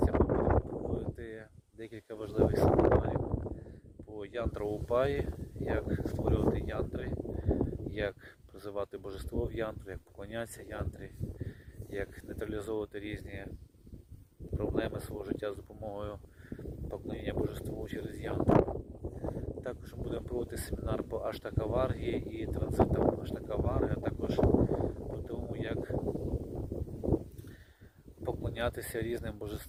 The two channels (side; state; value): both; identical; correlation 1.00